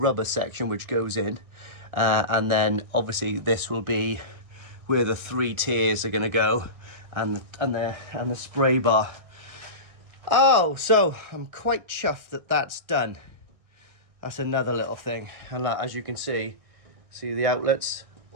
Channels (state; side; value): late; left; 1.6 ms